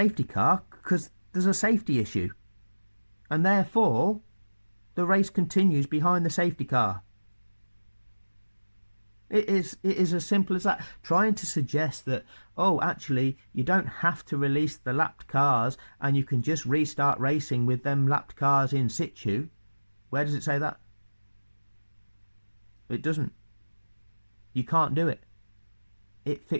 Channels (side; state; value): both; inverted; correlation -1.00